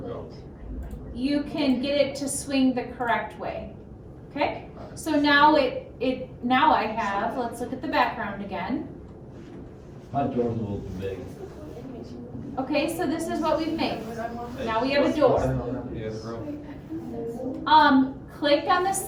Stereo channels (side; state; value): both; identical; correlation 1.00